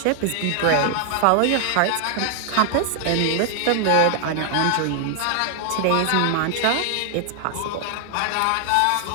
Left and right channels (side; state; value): both; different; correlation 0.00